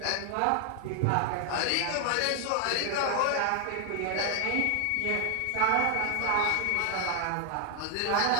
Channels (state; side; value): different; both; correlation 0.00